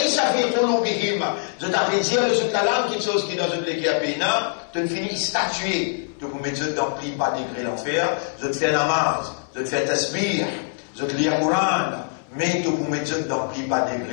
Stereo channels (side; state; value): right; silent; 63 dB below the other